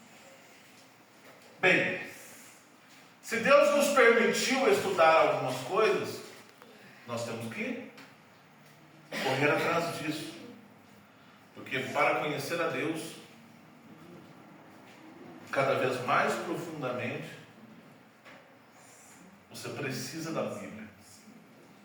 Bem, se Deus nos permitiu estudar algumas coisas, nós temos que correr atrás disso. Porque para conhecer a Deus cada vez mais profundamente, você precisa da Bíblia.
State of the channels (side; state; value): both; identical; correlation 1.00